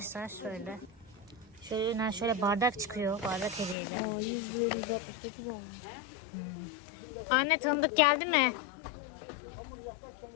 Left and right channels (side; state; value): right; drops out; at 3.8 s